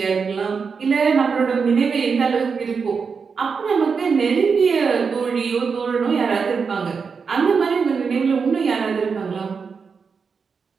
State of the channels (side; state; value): left; quieter; 5.5 dB